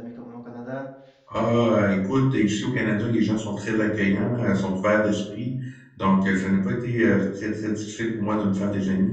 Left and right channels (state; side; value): identical; both; correlation 1.00